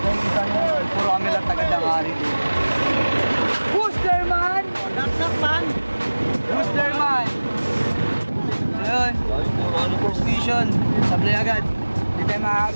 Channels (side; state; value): both; inverted; correlation -1.00